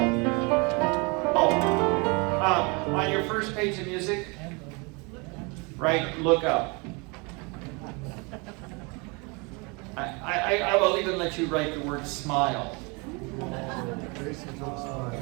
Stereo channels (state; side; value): quieter; left; 29.8 dB